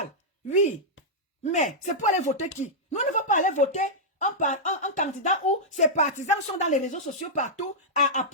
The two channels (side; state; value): both; normal; correlation -0.10